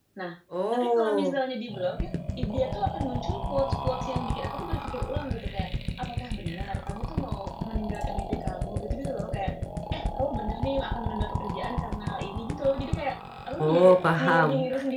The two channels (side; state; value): both; identical; correlation 1.00